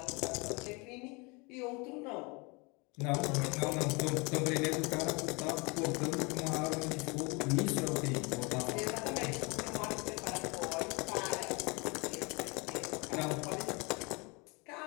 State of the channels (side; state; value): right; quieter; 28.5 dB